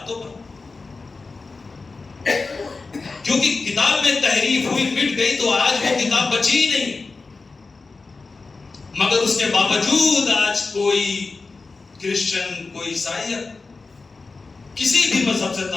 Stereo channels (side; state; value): right; quieter; 4.0 dB